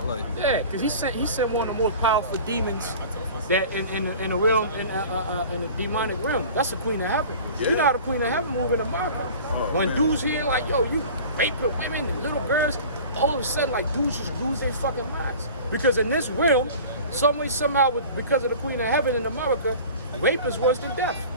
Yeah, because he sent one of the most powerful demons that in the realm in the demonic realm. That's the Queen of Heaven. Yeah. You know how the Queen of Heaven move in the market. When dudes hear like, yo, you raping women and little girls, all of a sudden like dudes just lose their fucking minds. Because in this realm, some way, somehow, because of the Queen of Heaven in America, rape is worse than death.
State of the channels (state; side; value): inverted; both; correlation -0.40